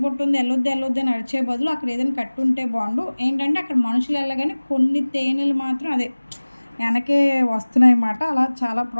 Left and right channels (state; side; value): inverted; both; correlation -1.00